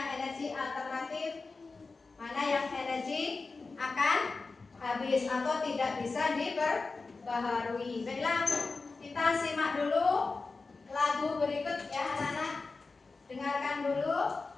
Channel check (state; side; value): quieter; right; 4.0 dB